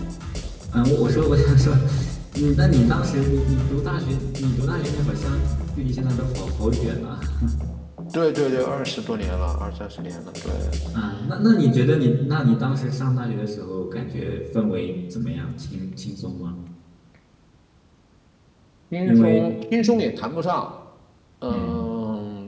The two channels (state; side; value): identical; both; correlation 1.00